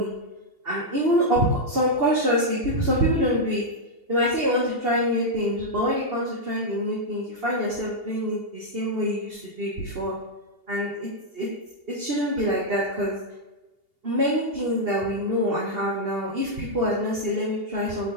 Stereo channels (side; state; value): left; late; 2.8 ms